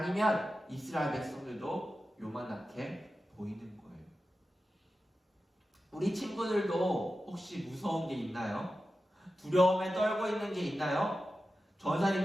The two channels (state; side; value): normal; both; correlation 0.93